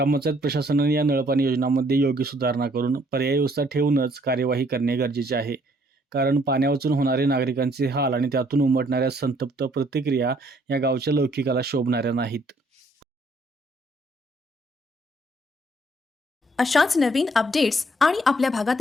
प्रशासनाने या नळपाणी योजनांमध्ये योग्य सुधारणा करून पर्यायी व्यवस्था ठेवूनच कार्यवाही करणे गरजेचे आहे. कारण पाण्यावाचून होणारे नागरिकांचे हाल आणि त्यातून उमटणाऱ्या संतप्त प्रतिक्रिया या गावच्या लौकिकाला शोभणाऱ्या नाहीत. अशाच नवीन अपडेट्स आणि आपल्या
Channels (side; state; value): both; normal; correlation 0.64